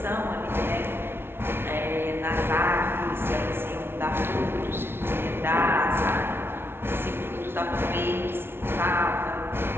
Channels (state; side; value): late; left; 0.11 ms